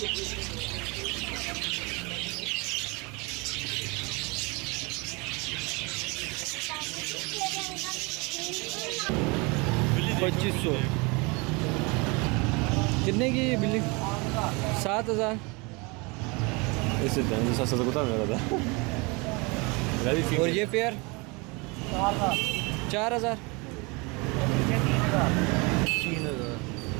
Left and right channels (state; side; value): quieter; left; 28.3 dB